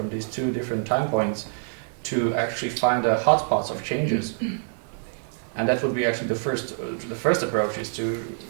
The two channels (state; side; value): silent; left; digital silence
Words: these two different time points to actually find the hotspots of changes. And that would be actually the first approach, is to